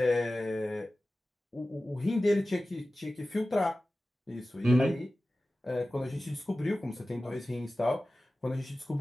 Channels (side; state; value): both; normal; correlation 0.96